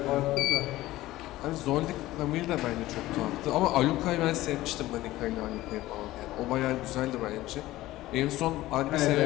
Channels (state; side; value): quieter; right; 16.6 dB